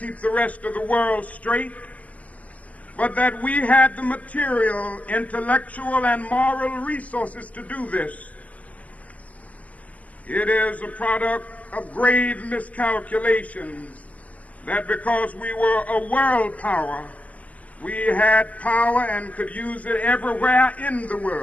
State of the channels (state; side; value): late; right; 0.074 ms